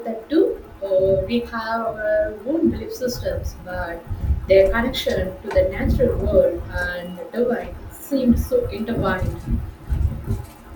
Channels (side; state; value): both; identical; correlation 1.00